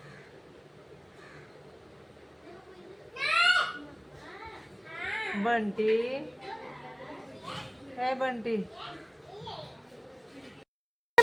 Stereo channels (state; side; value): identical; both; correlation 1.00